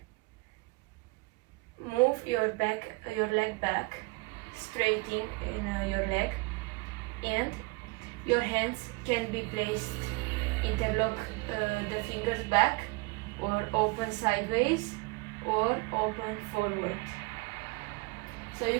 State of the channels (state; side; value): quieter; left; 26.9 dB